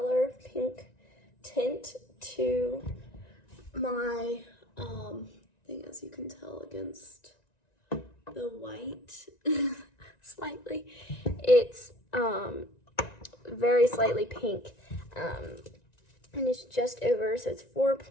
tint to my thing, as you can tell against the white slightly. It's very slightly pink, and it's just over, so it's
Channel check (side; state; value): right; late; 1.9 ms